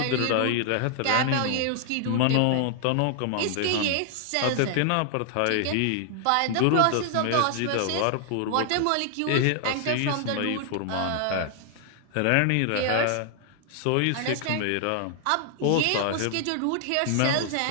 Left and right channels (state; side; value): different; both; correlation 0.00